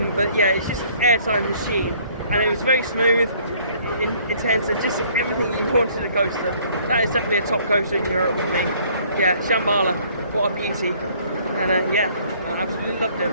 But yeah, it's just an airtime machine, and it was very smooth, intense, and just everything you wanted a coaster. That is definitely a top coaster in Europe for me. Yeah, Shambhala, what a beauty, and yeah, I absolutely loved it.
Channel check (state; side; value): inverted; both; correlation -0.60